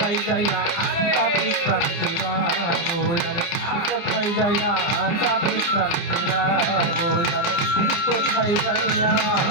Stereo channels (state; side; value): late; right; 29 ms